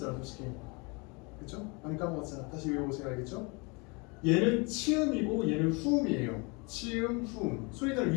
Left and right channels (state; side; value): quieter; right; 29.9 dB